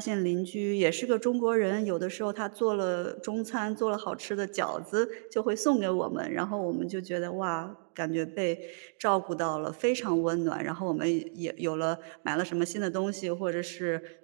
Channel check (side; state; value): left; silent; digital silence